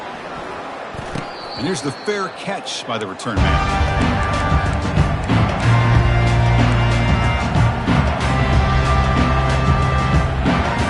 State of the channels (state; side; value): identical; both; correlation 1.00